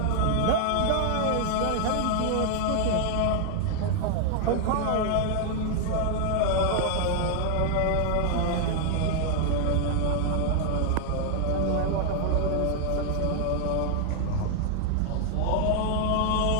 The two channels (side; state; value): both; different; correlation 0.00